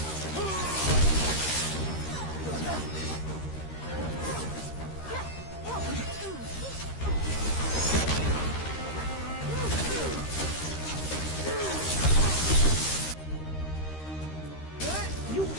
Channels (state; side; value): late; right; 13 ms